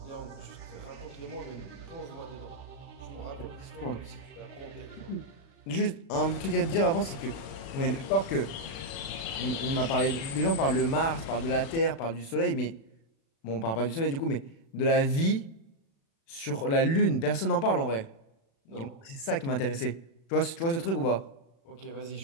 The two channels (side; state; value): right; late; 36 ms